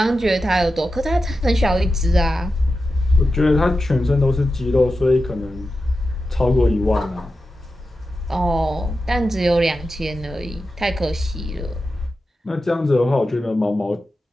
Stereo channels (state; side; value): normal; both; correlation 0.91